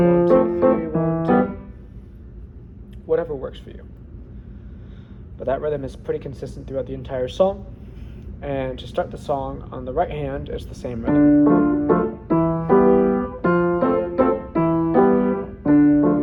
2, 3, 1, 2. Whatever works for you. But that rhythm is pretty consistent throughout the entire song. And to start the song on the right hand, it's the same rhythm.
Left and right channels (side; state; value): both; identical; correlation 1.00